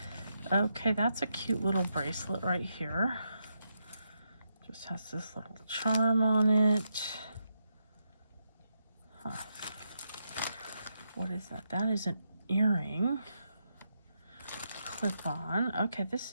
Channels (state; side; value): inverted; both; correlation -0.83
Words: Okay, that's a cute little bracelet right here. Just has this little charm on it. What is that? That is an earring. Clip on. Okay, this